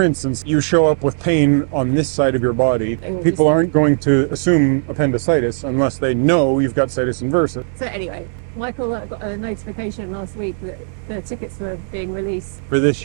instance, you show up with pain on this side of your body. will People just- aren't going to assume appendicitis unless they know you've got situs inversus. So anyway, Michael got a notification last week that the tickets were being released. For this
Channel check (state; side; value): silent; left; digital silence